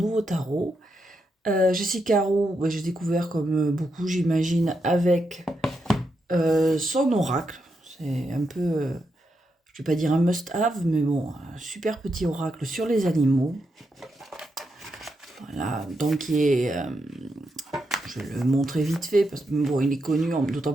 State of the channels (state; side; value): normal; both; correlation 0.83